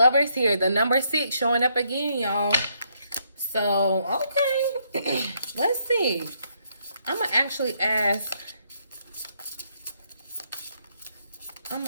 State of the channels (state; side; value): inverted; both; correlation -0.74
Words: here. The number 6 showing up again, y'all. So, okay. Let's see. I'm going to actually ask